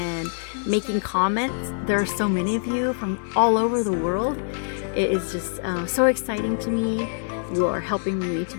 making comments. There are so many of you from all over the world. It is just so exciting to me. You are helping me to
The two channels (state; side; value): silent; right; digital silence